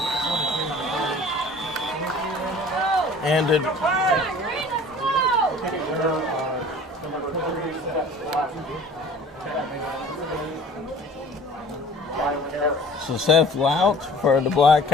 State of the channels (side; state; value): both; normal; correlation 0.47